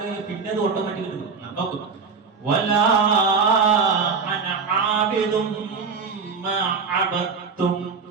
കഴിഞ്ഞാൽ പിന്നെ അത് ഓട്ടോമാറ്റിക് കിട്ടും. നോക്കും. വലാ അന ആബിദും മാ അബദതും.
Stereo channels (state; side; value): quieter; left; 5.3 dB